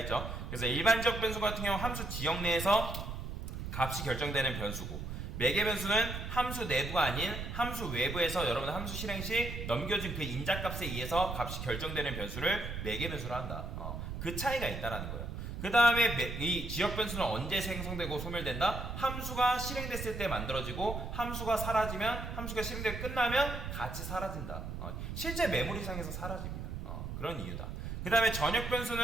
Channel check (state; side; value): noise; right; rumble, 6 dB below the sound